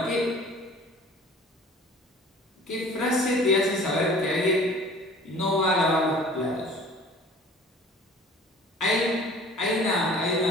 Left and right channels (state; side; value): normal; both; correlation 0.47